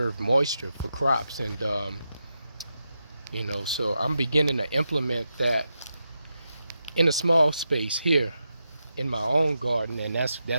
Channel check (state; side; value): inverted; both; correlation -0.87